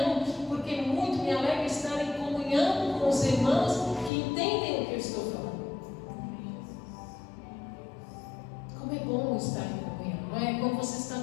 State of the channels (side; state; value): right; drops out; at 4.1 s